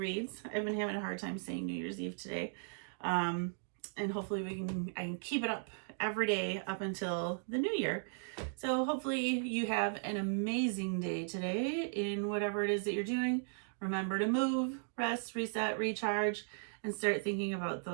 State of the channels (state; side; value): silent; left; digital silence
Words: I've been having a hard time saying New Year's Eve today. And hopefully I can keep it up every day up until the new year. So hopefully you have an amazing day today in whatever it is that you're doing. Remember to move, rest, reset, recharge, and start thinking about